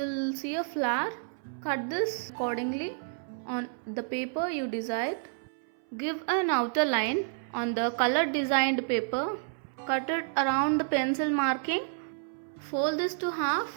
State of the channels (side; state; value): left; silent; 58 dB below the other